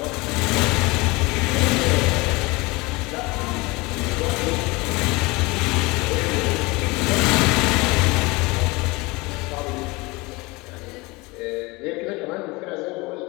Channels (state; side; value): quieter; right; 24.1 dB